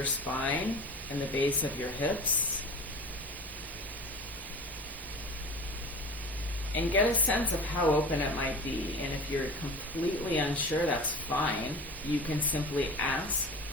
spine and the base of your hips, and get a sense of how open it might be. And if you're completely unsure, that's fine. You can simply ask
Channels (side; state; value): both; normal; correlation 0.35